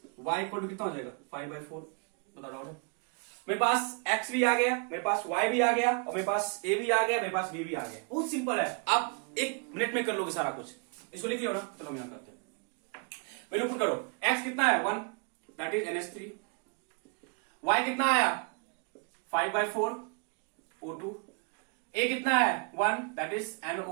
y equal कितना हो जाएगा 5/4। बता डाउट है। मेरे पास x भी आ गया, मेरे पास y भी आ गया, और मेरे पास a भी आ गया, मेरे पास b भी आ गया। बहुत सिंपल है, आप 1 मिनट में कर लोगे सारा कुछ। इसको लिख लियो ना, चलो हम यहां करते हैं। वैल्यू पुट करो, x कितना है 1 दैट इज NH3, y कितना आया 5/4 O2, a कितना है 1 दैट इज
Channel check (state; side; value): quieter; left; 36.4 dB